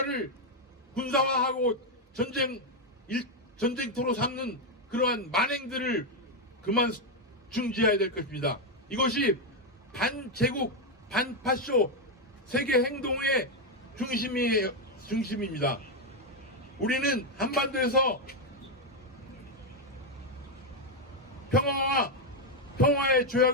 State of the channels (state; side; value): normal; both; correlation 0.03